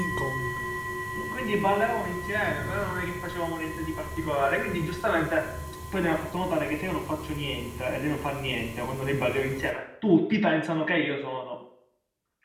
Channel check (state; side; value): identical; both; correlation 1.00